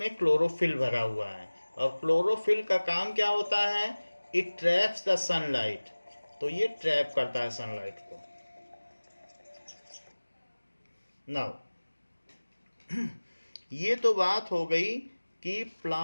क्लोरोफिल भरा हुआ है। और क्लोरोफिल का काम क्या होता है? It traps the sunlight. तो ये ट्रैप करता है सनलाइट को। नाउ ये तो बात हो गई कि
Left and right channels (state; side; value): inverted; both; correlation -1.00